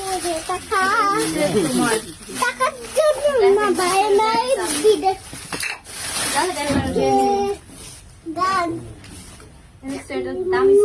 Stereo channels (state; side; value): identical; both; correlation 1.00